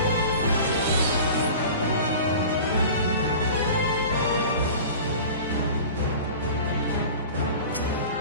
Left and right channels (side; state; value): both; inverted; correlation -0.38